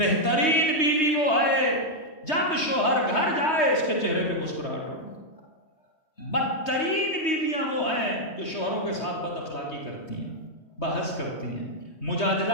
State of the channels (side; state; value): right; late; 3.2 ms